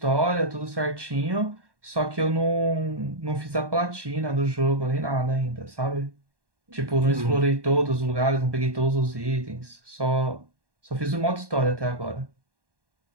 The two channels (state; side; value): late; left; 1.1 ms